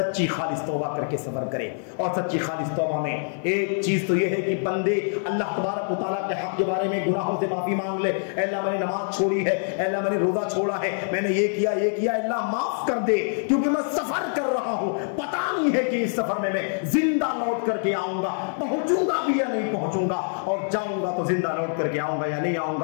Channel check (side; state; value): right; silent; 62 dB below the other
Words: خالص توبہ کر کے سفر کرے۔ اور سچی خالص توبہ میں ایک چیز تو یہ ہے کہ بندے اللہ تبارک و تعالیٰ کے حق کے بارے میں گناہوں سے معافی مانگ لے۔ اے اللہ میں نے نماز چھوڑی ہے، اے اللہ میں نے روزہ چھوڑا ہے، میں نے یہ کیا، اللہ معاف کر دے، کیونکہ میں سفر کر رہا ہوں، پتہ نہیں ہے کہ اس سفر میں زندہ لوٹ کر کے آؤں گا، پہنچوں گا بھی یا نہیں پہنچوں گا، اور جاؤں گا تو زندہ لوٹ کر کے آؤں گا یا نہیں آؤں